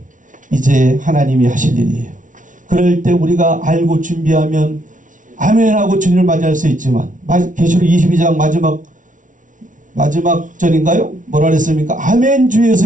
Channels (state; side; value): late; left; 0.37 ms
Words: 이제 하나님이 하실 일이에요. 그럴 때 우리가 알고 준비하면 아멘하고 주님을 맞이할 수 있지만 계시록 22장 마지막 절인가요? 뭐라 그랬습니까? 아멘